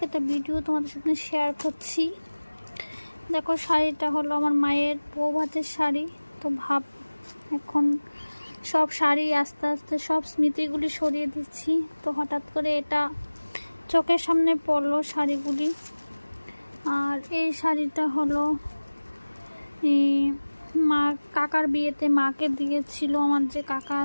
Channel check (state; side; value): inverted; both; correlation -1.00